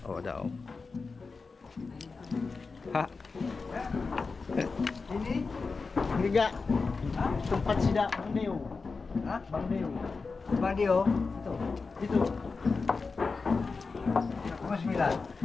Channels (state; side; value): quieter; right; 4.4 dB